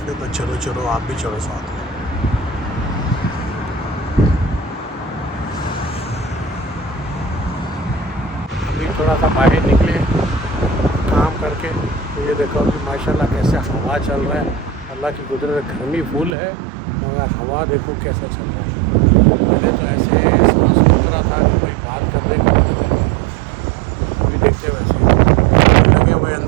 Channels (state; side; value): drops out; left; at 16.4 s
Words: तो चलो चलो आप भी चलो साथ में। अभी थोड़ा सा बाहर निकले काम करके, तो ये देखो अभी माशाल्लाह कैसे हवा चल रहा है। अल्लाह की कुदरत, गर्मी फुल है मगर हवा देखो कैसा चल रहा है। पहले तो ऐसे सांस रुक रहा था कि भाई बात करने का, अभी देखते वैसे लगे हुए